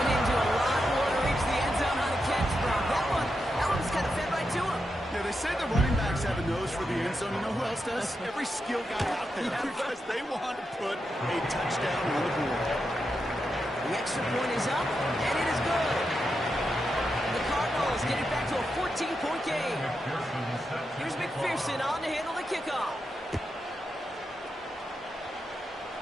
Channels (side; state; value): both; normal; correlation 0.86